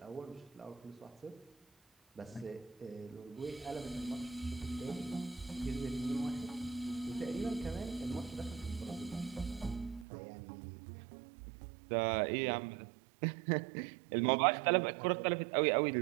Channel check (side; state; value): left; drops out; at 10.1 s